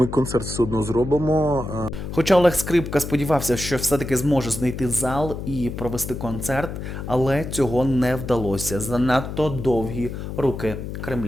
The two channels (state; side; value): noise; left; hum, 7 dB below the sound